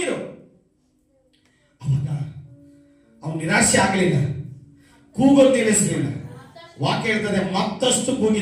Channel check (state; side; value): identical; both; correlation 1.00